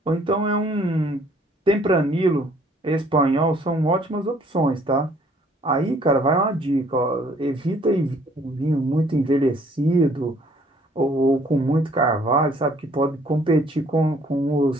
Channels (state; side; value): normal; both; correlation 0.60